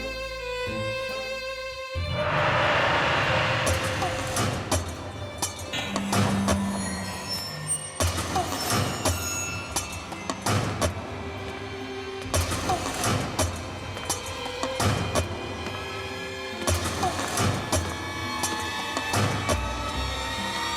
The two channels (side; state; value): both; identical; correlation 1.00